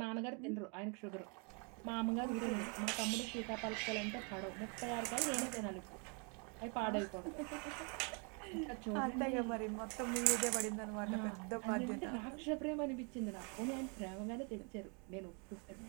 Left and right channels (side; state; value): left; quieter; 36.0 dB